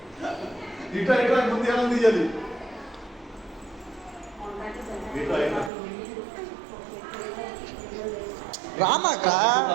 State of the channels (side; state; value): left; drops out; at 5.7 s